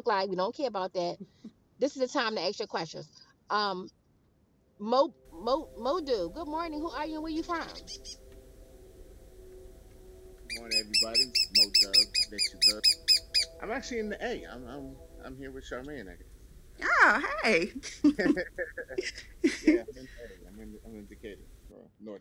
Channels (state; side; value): identical; both; correlation 1.00